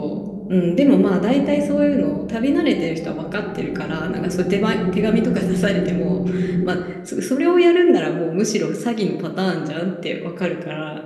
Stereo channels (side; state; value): both; identical; correlation 1.00